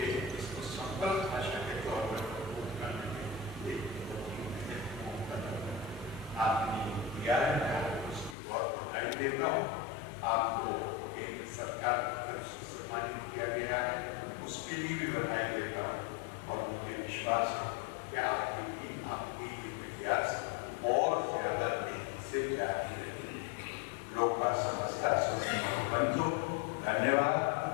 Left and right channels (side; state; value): right; drops out; at 8.3 s